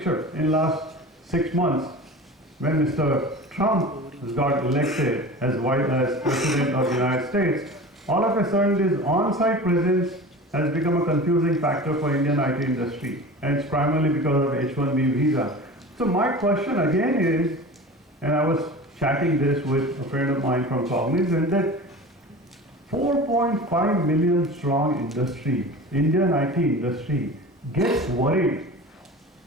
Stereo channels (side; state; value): both; normal; correlation 0.35